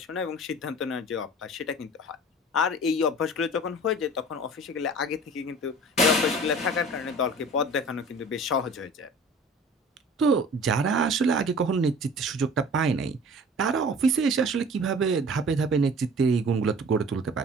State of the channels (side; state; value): both; normal; correlation 0.44